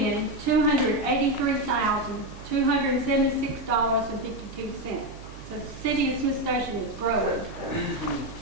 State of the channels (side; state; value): right; noise; hum, 16 dB below the sound